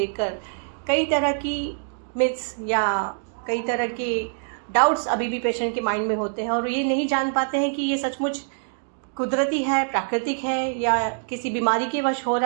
कई तरह की मिथ्स या कई तरह के डाउट्स अभी भी पेशेंट के माइंड में होते हैं और ये नहीं जान पाते हैं कि ये सचमुच कुदरती है, प्राकृतिक है, या किसी बीमारी के वश हो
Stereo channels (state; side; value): silent; left; digital silence